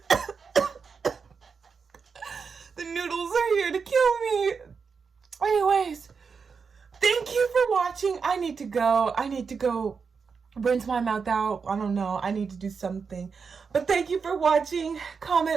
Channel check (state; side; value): quieter; left; 5.5 dB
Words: The noodles are here to kill me. Anyways, thank you for watching. I need to go rinse my mouth out. I don't know. I need to do something. But thank you for watching.